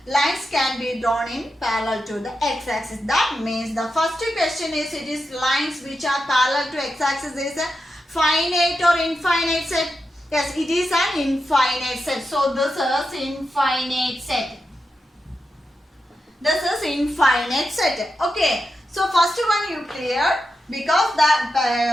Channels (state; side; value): normal; both; correlation 0.88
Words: lines can be drawn in parallel to the x-axis. That means the first question is it is lines which are parallel to x-axis is a finite or infinite set. Yes, it is an infinite set. So this is infinite set. This is infinite set. Okay. So first one you cleared, because the